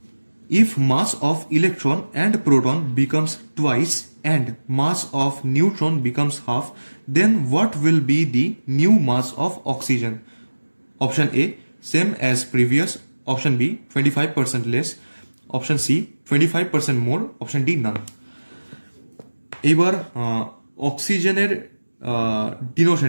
If mass of electron and proton becomes twice and mass of neutron becomes half, then what will be the new mass of oxygen? Option A same as previous, option B 25% less, option C 25% more, option D none. এইবার অক্সিজেনের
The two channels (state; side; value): inverted; both; correlation -1.00